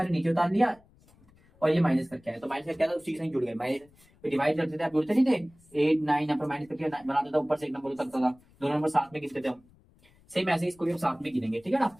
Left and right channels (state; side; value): noise; left; rumble, 29 dB below the sound